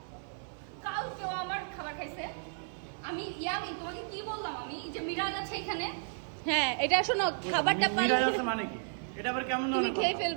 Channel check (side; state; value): left; silent; 56 dB below the other